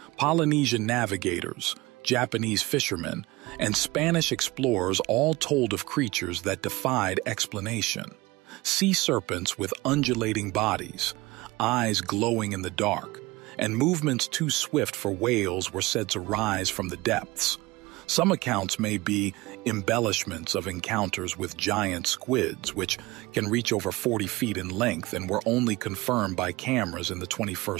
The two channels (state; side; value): quieter; left; 21.2 dB